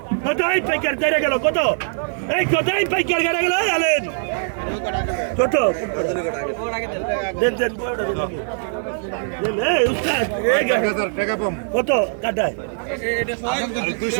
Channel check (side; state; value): left; silent; digital silence